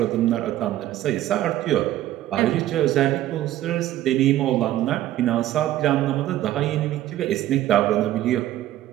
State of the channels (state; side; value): quieter; left; 13.7 dB